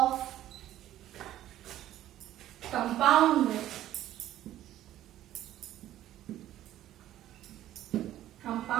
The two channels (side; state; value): left; quieter; 13.1 dB